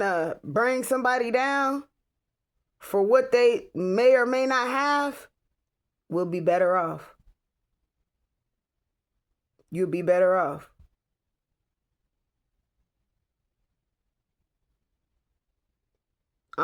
bring somebody down for what they may or may not have, we'll be better off. You'll be better off.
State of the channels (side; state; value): both; identical; correlation 1.00